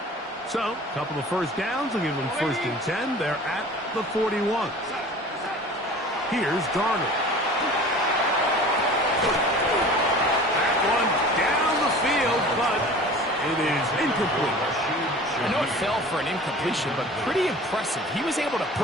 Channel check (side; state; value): both; normal; correlation 0.42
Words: So, a couple of first downs will give them first and 10. They're at the 41. Here's Darnold. That one down the field, but it is incomplete. I know it fell for an incompletion, but pretty impressive. He was able to